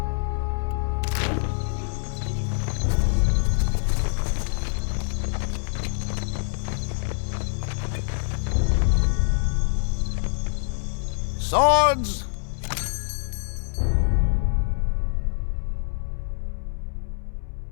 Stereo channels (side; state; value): right; silent; 62 dB below the other